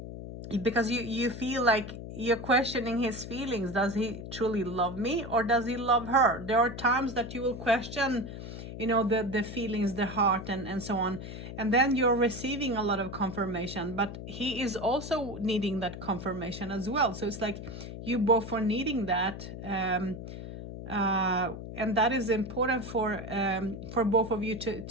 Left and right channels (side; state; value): left; noise; hum, 10 dB below the sound